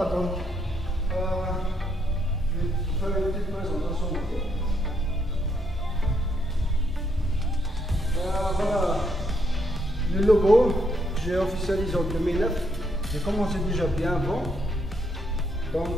donc je vais faire une petite présentation. Voilà le logo, j'ai officialisé en 2009. J'ai commencé déjà bien avant.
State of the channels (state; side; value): normal; both; correlation 0.75